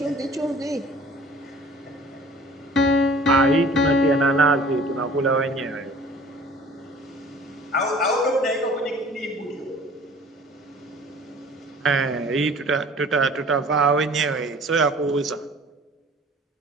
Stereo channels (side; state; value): both; normal; correlation 0.48